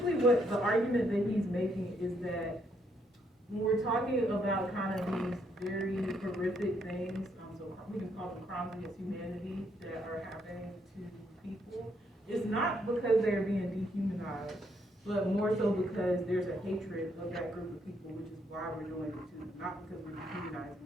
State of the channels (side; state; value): both; normal; correlation 0.73